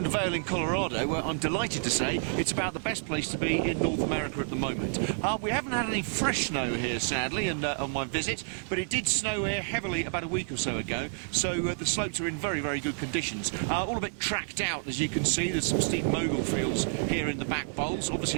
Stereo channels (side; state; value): left; silent; 58 dB below the other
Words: to Vail in Colorado, where I'm delighted to say it's about the best place to be in North America at the moment. We haven't had any fresh snow here, sadly, on my visit, but it did snow here heavily about a week or so ago, so the slopes are in very, very good conditions. All a bit tracked out, as you can see. There's some steep mogul fields here in the back bowls. Obviously